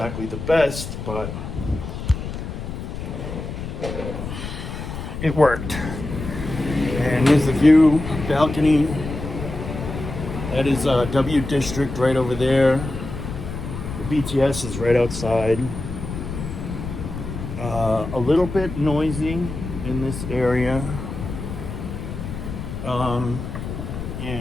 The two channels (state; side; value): noise; left; rumble, 7 dB below the sound